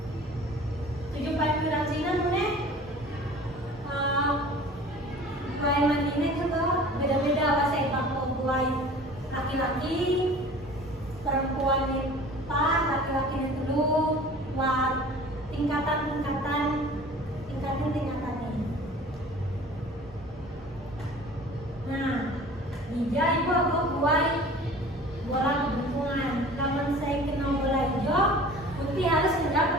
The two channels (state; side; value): normal; both; correlation 0.44